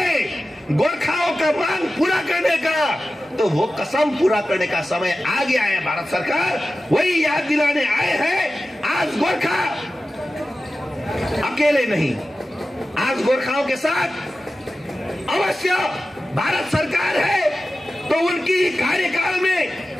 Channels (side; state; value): both; normal; correlation 0.94